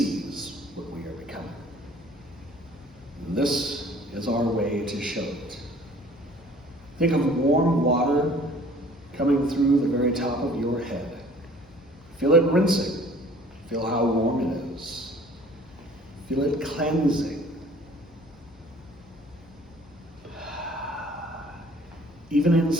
what we are becoming. And this is our way to show it. Think of warm water coming through the very top of your head. Feel it rinsing. Feel how warm it is. Feel it cleansing. Even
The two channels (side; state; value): left; noise; hum, 27 dB below the sound